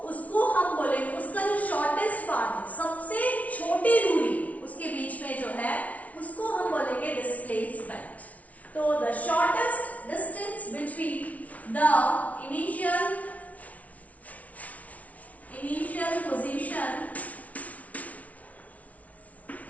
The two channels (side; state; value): right; late; 0.069 ms